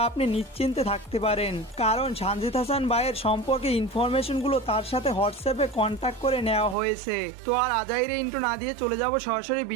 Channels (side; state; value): left; drops out; at 6.8 s